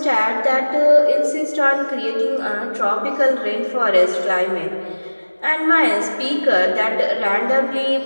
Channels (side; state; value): both; inverted; correlation -1.00